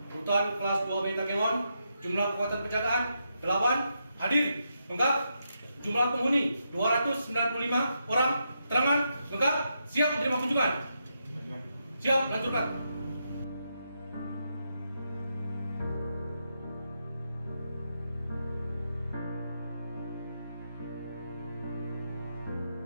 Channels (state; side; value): inverted; both; correlation -0.82